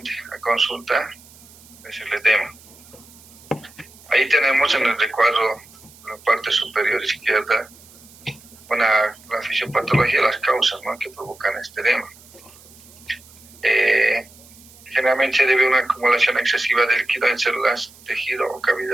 a consulta es el edema. Ahí tenemos en el recuadro, en la parte superior izquierda, la fisiopatología de las causas, ¿no?, que provocan este edema. Generalmente se debe a una acumulación excesiva de líquido en células, tejido o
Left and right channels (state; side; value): noise; right; hiss, 23 dB below the sound